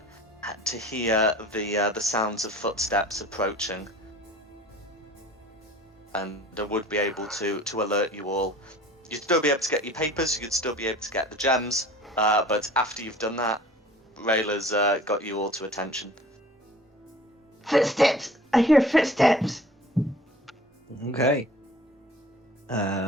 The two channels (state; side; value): normal; both; correlation 0.46